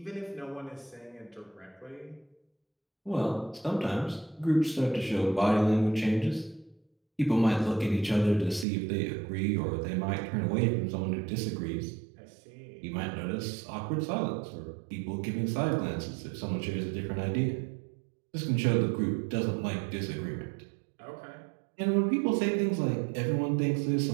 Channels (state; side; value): drops out; left; at 8.7 s